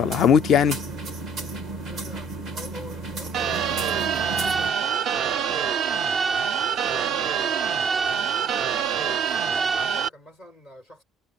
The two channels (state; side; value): normal; both; correlation 0.56